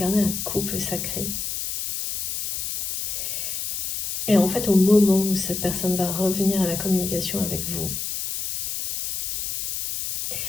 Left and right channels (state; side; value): noise; left; hiss, 3 dB below the sound